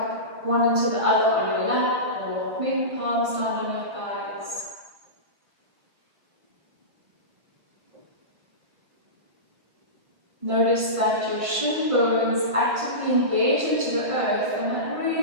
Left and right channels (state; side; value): late; left; 1.7 ms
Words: one into the other on your lap, or maybe palms down on your thighs. Notice that your shin bones actively engage into the earth, and that